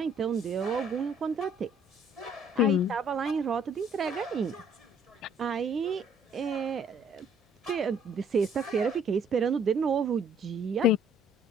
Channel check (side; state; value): both; normal; correlation 0.61